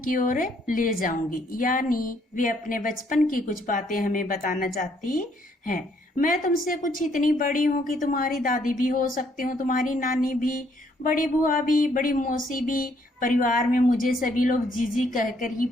की ओर ले जाऊंगी, यानी वे अपने बचपन की कुछ बातें हमें बताना चाहती हैं। मैं तुमसे कुछ इतनी बड़ी हूँ कि तुम्हारी दादी भी हो सकती हूँ, तुम्हारी नानी भी, बड़ी बुआ भी, बड़ी मौसी भी। परिवार में मुझे सभी लोग जीजी कहकर ही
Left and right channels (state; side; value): normal; both; correlation 0.68